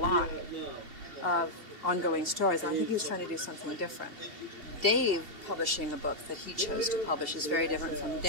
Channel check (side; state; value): left; late; 2.7 ms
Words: of ongoing stories. And I think he was trying to do something different. Dave publishing a book that he chose to publish is very different from